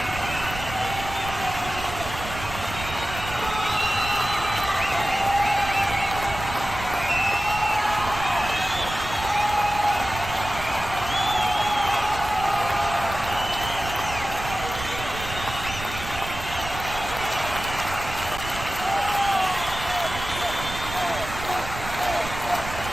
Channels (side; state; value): right; noise; rumble, 10 dB below the sound